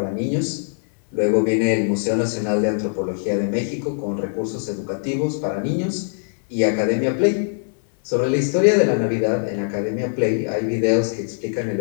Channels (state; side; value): silent; right; digital silence